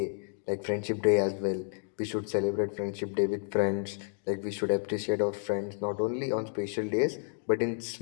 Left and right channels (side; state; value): right; silent; digital silence